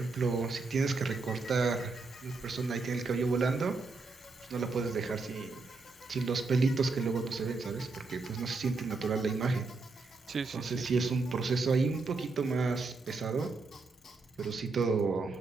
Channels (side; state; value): left; quieter; 3.8 dB